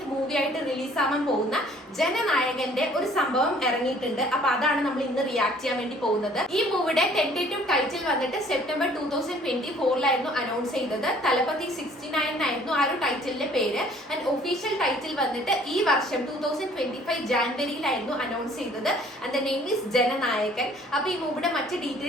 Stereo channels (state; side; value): normal; both; correlation 0.56